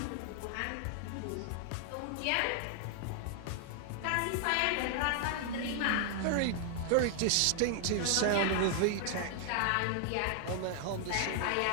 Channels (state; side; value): different; both; correlation 0.00